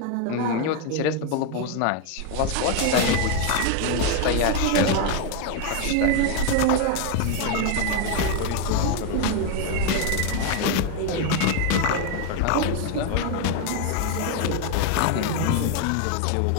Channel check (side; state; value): both; different; correlation 0.01